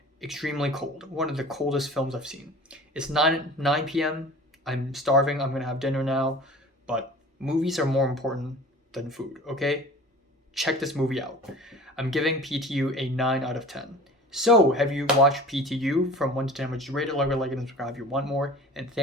Extremely cold. One of the coldest films I've seen. It's 9 p.m. I'm starving. I'm gonna have dinner now. But movies are more important than food, okay? Check this movie out. I'm giving PTU a 9 out of 10. So, have you watched PTU? From 1 to 10, would you rate it, like it, and subscribe if you want more? And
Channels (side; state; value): both; normal; correlation 0.42